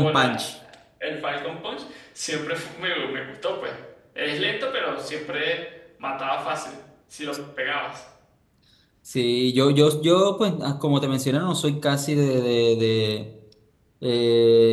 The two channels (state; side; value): identical; both; correlation 1.00